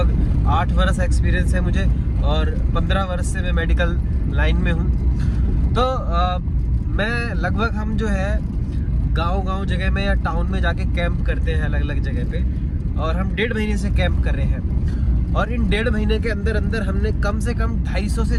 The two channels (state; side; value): identical; both; correlation 1.00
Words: 8 वर्ष एक्सपीरियंस है मुझे, और 15 वर्ष से मैं मेडिकल लाइन में हूँ। तो मैं लगभग हम जो है गांव जगह में या टाउन में जाके कैंप करते हैं अलग अलग जगह पे, और हम 1.5 महीने से कैंप कर रहे हैं। और इन 1.5 महीने के अंदर अंदर हमने कम से कम 250 से